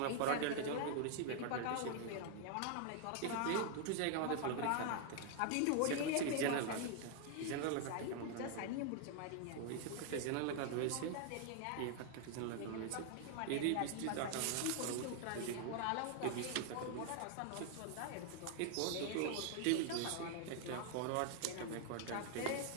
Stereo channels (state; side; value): different; both; correlation 0.00